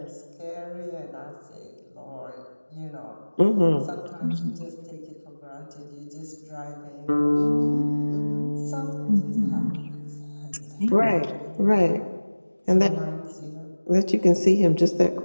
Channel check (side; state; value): both; inverted; correlation -1.00